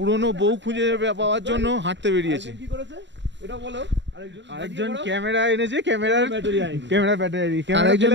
বউ খুঁজে পাওয়ার জন্য হাঁটতে বেরিয়েছে। আরেকজন ক্যামেরা এনেছে, ক্যামেরা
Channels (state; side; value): late; left; 0.52 ms